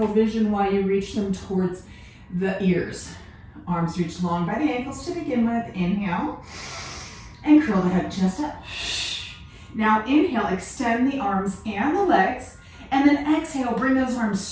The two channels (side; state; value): both; identical; correlation 1.00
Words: vision while you reach them towards the ears. Arms reach long by the ankles to begin with. Inhale, and curl the head just up. Now inhale, extend the arms and the legs, and then exhale, bring those arms